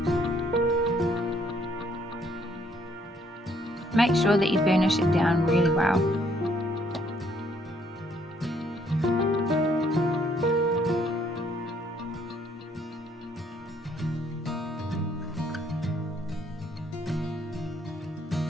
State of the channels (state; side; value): normal; both; correlation 0.66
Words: Make sure that you burnish it down really well.